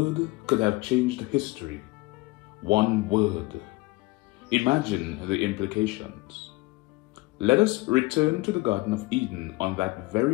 could have changed history. One word. Imagine the implications. Let us return to the Garden of Eden on that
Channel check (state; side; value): quieter; right; 22.5 dB